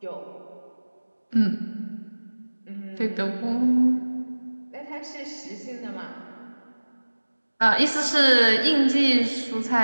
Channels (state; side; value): inverted; both; correlation -1.00